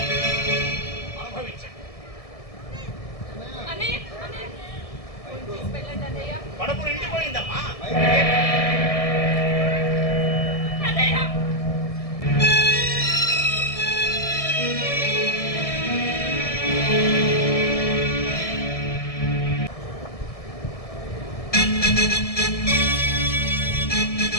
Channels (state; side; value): late; right; 1.7 ms